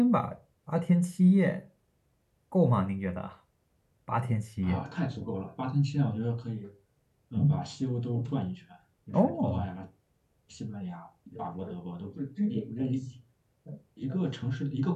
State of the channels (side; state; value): both; identical; correlation 1.00